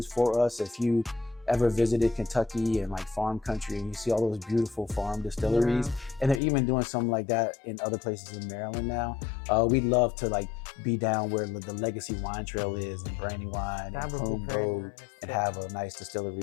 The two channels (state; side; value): drops out; right; at 6.4 s